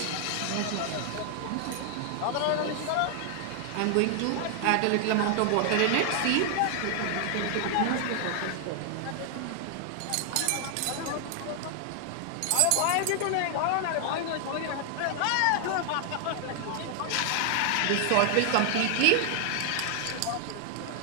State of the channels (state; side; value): different; both; correlation 0.00